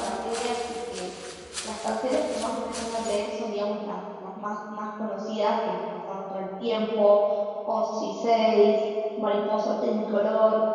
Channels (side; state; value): both; identical; correlation 1.00